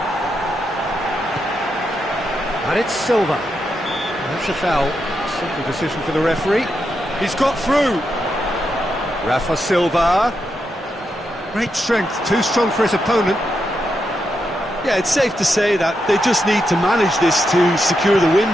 And it's Silva. That's a foul. Simple decision for the referee. He's got through. Rafa Silva. Great strength, too strong for his opponent. Yeah, it's safe to say that they just need to manage this to secure the win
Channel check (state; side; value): normal; both; correlation 0.84